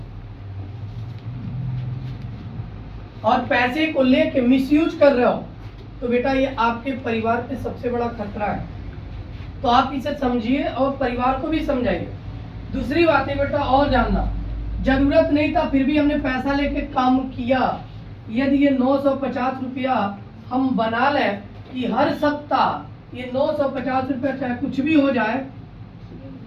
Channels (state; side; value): identical; both; correlation 1.00